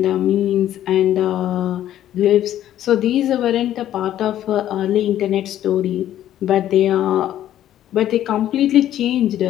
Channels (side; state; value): right; quieter; 12.0 dB